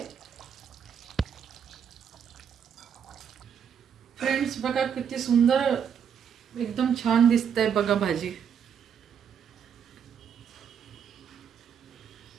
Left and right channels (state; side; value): quieter; left; 7.8 dB